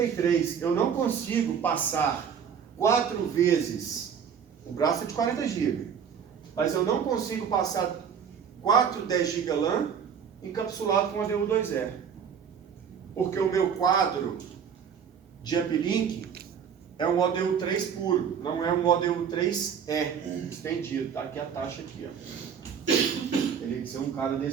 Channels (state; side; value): quieter; left; 7.4 dB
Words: Eu não consigo passar 4 vezes, o braço é de 40 GB, mas eu não consigo passar 4 10 GB LAN encapsulado com ODU 2E. Porque o meu quadro de uplink é um ODU 3 puro, não é um ODU 3E estendido, tá? Aqui a taxa aqui, ó. Teria que ser um cara